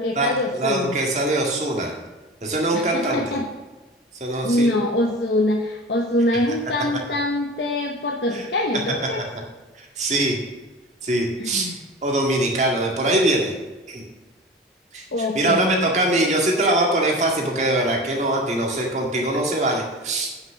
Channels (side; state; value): both; normal; correlation 0.34